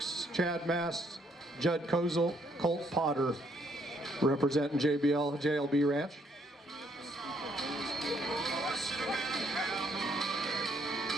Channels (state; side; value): normal; both; correlation 0.69